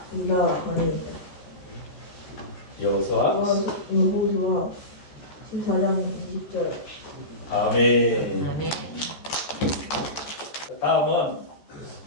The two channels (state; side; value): late; right; 14 ms